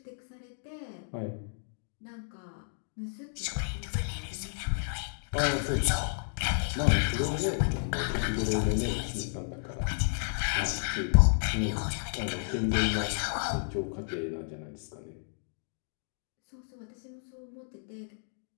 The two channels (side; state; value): right; silent; digital silence